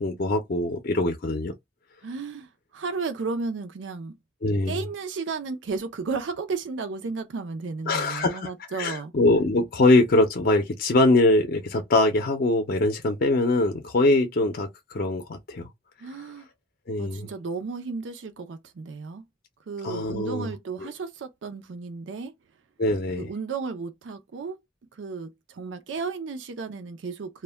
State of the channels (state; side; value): normal; both; correlation 0.31